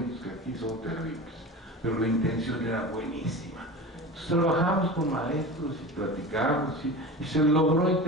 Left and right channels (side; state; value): both; normal; correlation 0.31